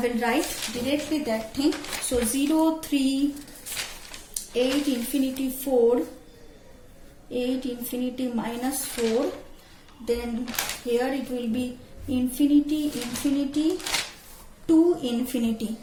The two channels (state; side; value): identical; both; correlation 1.00